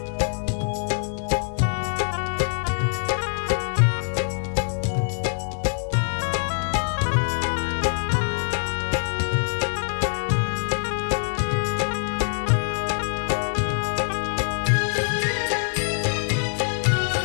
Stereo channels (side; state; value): right; silent; 62 dB below the other